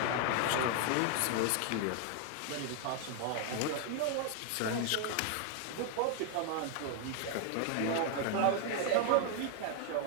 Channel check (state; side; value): different; both; correlation 0.00